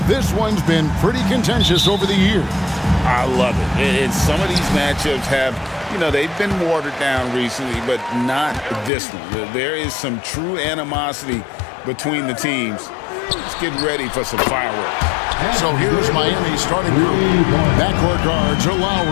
this one's been pretty contentious over the years. I love it. And some of these matchups have, you know, they've been watered down recently, but not this one. There is some true animosity between the teams. Let's get ready for some fireworks. So here's Miami's starting group. Backcourt guards are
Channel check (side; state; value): right; drops out; at 8.9 s